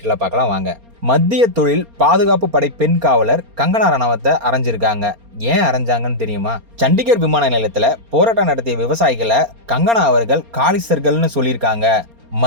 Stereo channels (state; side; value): late; left; 4.3 ms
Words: பார்க்கலாம் வாங்க. மத்திய தொழில் பாதுகாப்பு படை பெண் காவலர் கங்கனா ரணாவத்தை அரைஞ்சிருக்காங்க. ஏன் அரைஞ்சாங்கன்னு தெரியுமா? சண்டிகர் விமான நிலையத்தில் போராட்டம் நடத்திய விவசாயிகளை கங்கனா அவர்கள் காலிஸ்தர்கள்னு சொல்லியிருக்காங்க.